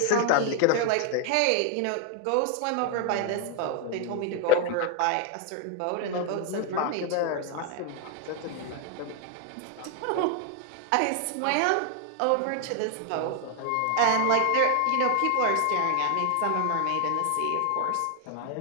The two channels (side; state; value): both; different; correlation 0.01